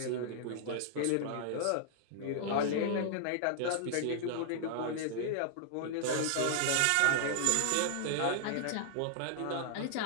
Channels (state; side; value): different; both; correlation -0.01